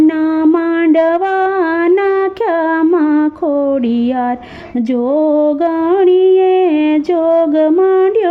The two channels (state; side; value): identical; both; correlation 1.00